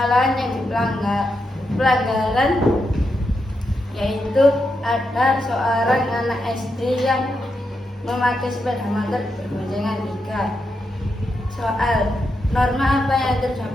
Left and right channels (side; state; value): both; normal; correlation 0.84